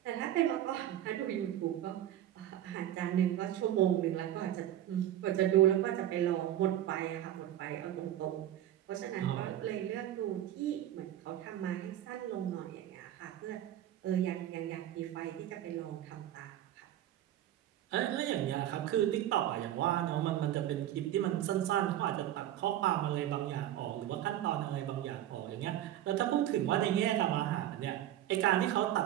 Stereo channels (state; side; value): quieter; left; 12.2 dB